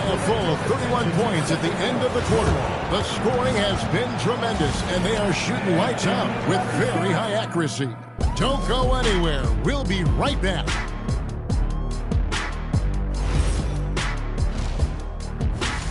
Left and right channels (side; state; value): both; identical; correlation 1.00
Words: full 31 points at the end of the quarter. The scoring has been tremendous, and they are shooting lights out with very high accuracy. Don't go anywhere. We'll be right back.